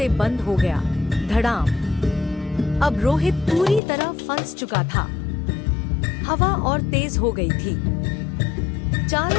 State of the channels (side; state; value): right; drops out; at 3.8 s